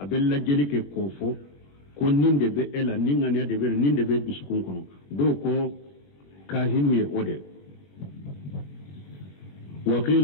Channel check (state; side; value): late; right; 21 ms